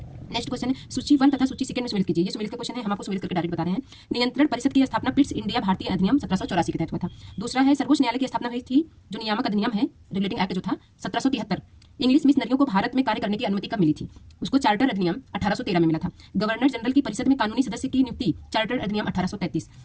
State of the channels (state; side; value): identical; both; correlation 1.00